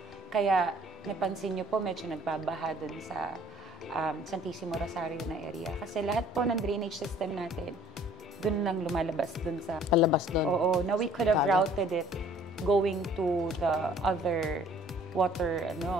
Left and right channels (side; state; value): both; normal; correlation 0.55